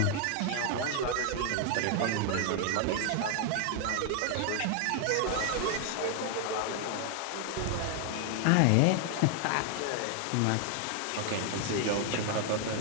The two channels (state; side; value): different; both; correlation 0.00